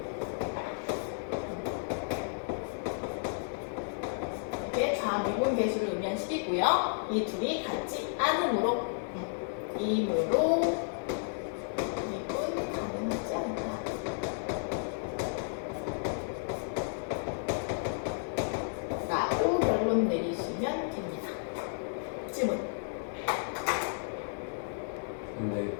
이게 좌미분계수를 의미한 식이고요. 이 둘이 같지 않으므로 이므로 미분 가능하지 않다. 라고 결론 내리시면 됩니다. 질문. 근데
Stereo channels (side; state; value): right; silent; digital silence